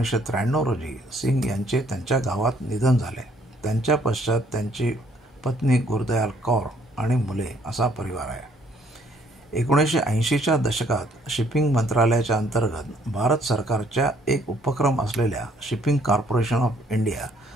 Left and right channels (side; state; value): both; normal; correlation 0.65